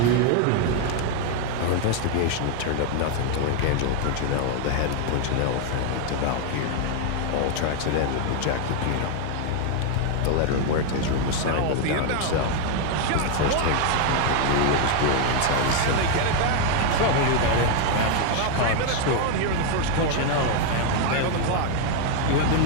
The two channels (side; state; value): both; different; correlation 0.01